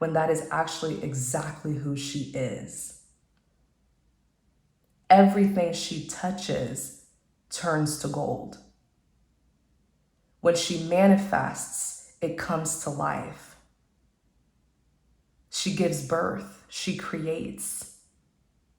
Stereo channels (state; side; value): identical; both; correlation 1.00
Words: that is actually exactly who she is. Everything she touches turns to gold. When she manifests, it comes to life. She gives birth. She creates.